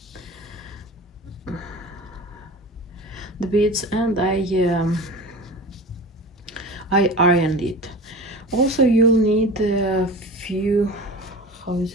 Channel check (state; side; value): normal; both; correlation 0.34